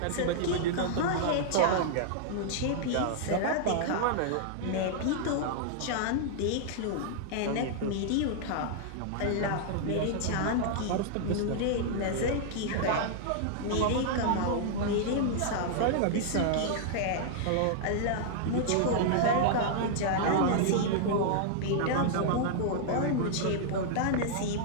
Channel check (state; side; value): different; both; correlation -0.01